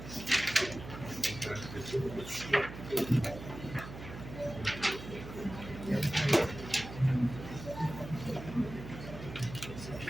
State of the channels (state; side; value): noise; right; hum, 11 dB below the sound